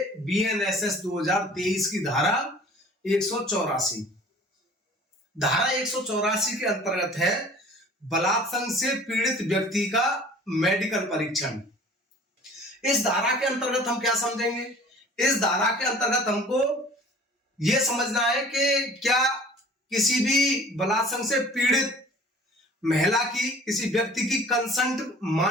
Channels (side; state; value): both; normal; correlation 0.48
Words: बीएनएसएस 2023 की धारा 184। धारा 184 के अंतर्गत है बलात्संग से पीड़ित व्यक्ति का मेडिकल परीक्षण। इस धारा के अंतर्गत हम क्या समझेंगे? इस धारा के अंतर्गत हमको यह समझना है कि क्या किसी भी बलात्संग से पीड़ित महिला की, किसी व्यक्ति की कंसेंट